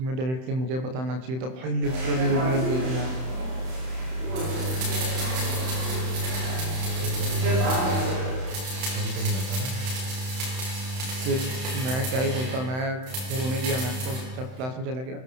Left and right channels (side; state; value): left; late; 31 ms